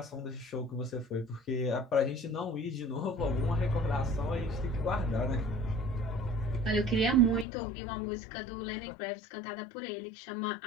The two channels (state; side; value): drops out; right; at 7.5 s